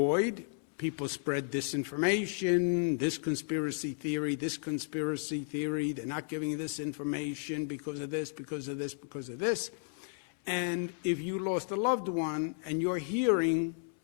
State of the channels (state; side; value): silent; right; 56 dB below the other